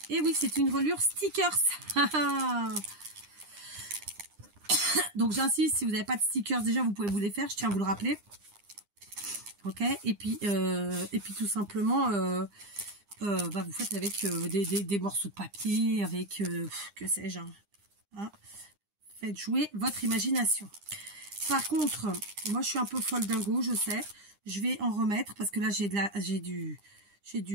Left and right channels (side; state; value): left; late; 9.9 ms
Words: Et oui, c'est une relure stickers. Donc j'insiste, si vous n'avez pas de stickers, déjà vous pouvez vous les faire, je tiens à vous le rappeler. Ok, et puis tout simplement, bah, vous faites avec des morceaux de papier, avec que sais-je. Hein. Faites jouer votre imagination. Par contre, moi je suis un peu folle dingo, je sais. Je vais en remettre parce que là j'ai la